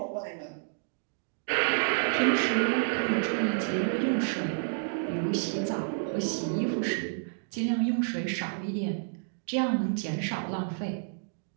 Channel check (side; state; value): left; silent; digital silence